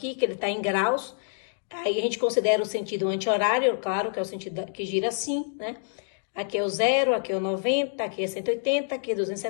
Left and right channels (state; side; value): silent; right; digital silence